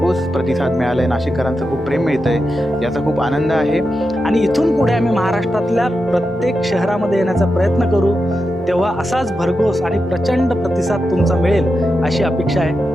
प्रतिसाद मिळाला आहे. नाशिककरांचं खूप प्रेम मिळतं आहे, याचा खूप आनंद आहे. आणि इथून पुढे आम्ही महाराष्ट्रातल्या प्रत्येक शहरामध्ये येण्याचा प्रयत्न करू. तेव्हा असाच भरघोस आणि प्रचंड प्रतिसाद तुमचा मिळेल अशी अपेक्षा आहे.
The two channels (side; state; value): both; normal; correlation 0.89